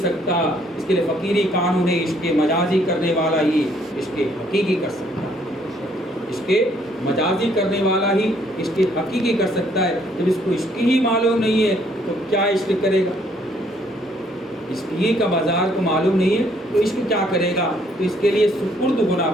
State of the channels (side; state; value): both; normal; correlation 0.66